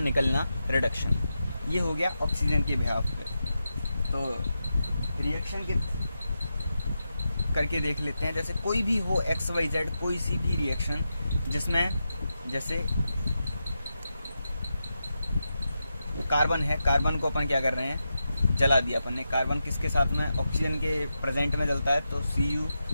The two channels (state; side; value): inverted; both; correlation -0.88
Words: रिडक्शन। ये हो गया ऑक्सीजन के बिहाफ पे। तो रिएक्शन के करके देख लेते हैं। जैसे कोई भी हो XYZ, कोई सी भी रिएक्शन जिसमें, जैसे कार्बन है, कार्बन को अपन क्या कर रहे हैं? जला दिया अपन ने। कार्बन किसके साथ में? ऑक्सीजन के प्रेजेंट में जलता है, तो Cu